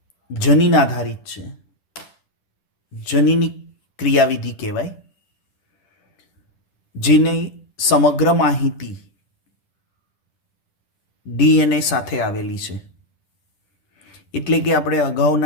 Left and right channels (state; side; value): late; right; 10 ms